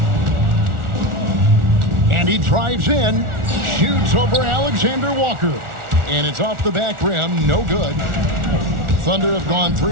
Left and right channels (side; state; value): left; late; 1.4 ms